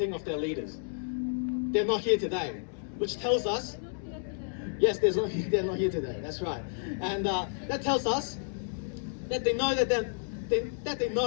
of their leaders. They're not here today, which tells us, yes, they're not here today, that's right. And that tells us that they know that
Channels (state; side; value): silent; right; digital silence